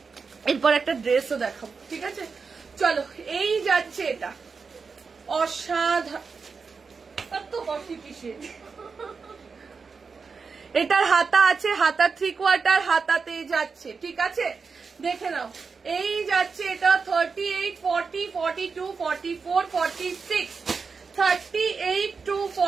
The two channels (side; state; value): left; quieter; 5.1 dB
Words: এরপর একটা ড্রেসও দেখাবো। ঠিক আছে, চলো এই যাচ্ছে এটা, অসাধারণ। এটার হাতা আছে, হাতা 3/4 হাতাতে যাচ্ছে। ঠিক আছে, দেখে নাও এই যাচ্ছে এটা 38 40 42 44 46। 38 to